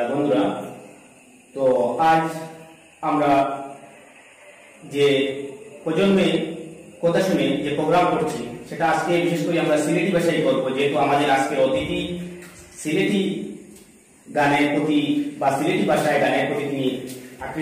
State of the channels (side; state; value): both; identical; correlation 1.00